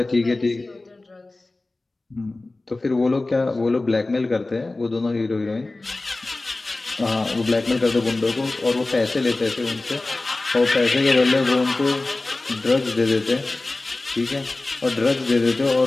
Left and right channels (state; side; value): quieter; right; 3.1 dB